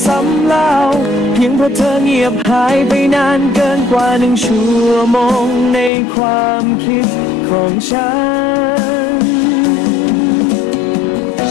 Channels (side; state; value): right; drops out; at 5.9 s